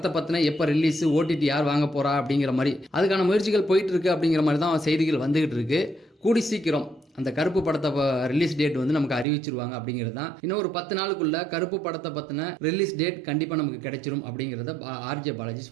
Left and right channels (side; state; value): left; drops out; at 9.2 s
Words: பற்றின எப்போ ரிலீஸு, ஓடிடி யார் வாங்க போகிறா அப்படிங்கிற மாதிரி அதுக்கான முயற்சிகள் போயிட்டு இருக்கு அப்படிங்கிற மாதிரி தான் செய்திகள் வந்துகிட்டு இருக்கு. கூடி சீக்கிரம் அந்த கருப்பு படத்தை ரிலீஸ் டேட் வந்து நமக்கு அறிவிச்சிருவாங்க அப்படிங்கிறது தான். இன்னும் ஒரு 10 நாளுக்குள்ள கருப்பு படத்தை பற்றின ரிலீஸ் டேட் கண்டிப்பாக நமக்கு கிடைச்சிரும் அப்படிங்கிறத ஆர்ஜே பாலாஜி